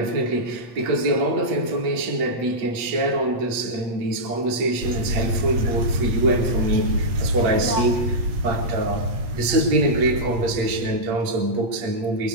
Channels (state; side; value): late; left; 8.2 ms